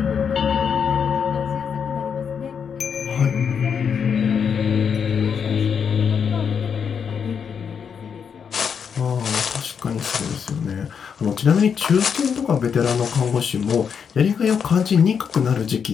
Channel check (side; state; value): right; quieter; 6.9 dB